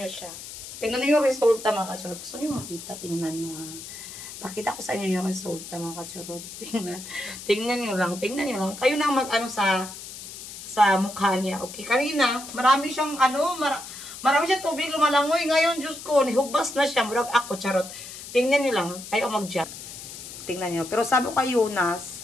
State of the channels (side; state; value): left; noise; hiss, 12 dB below the sound